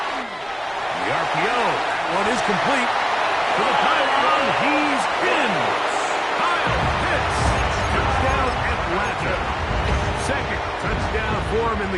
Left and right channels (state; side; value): identical; both; correlation 1.00